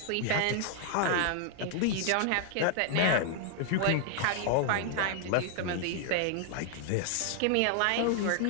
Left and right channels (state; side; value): different; both; correlation 0.00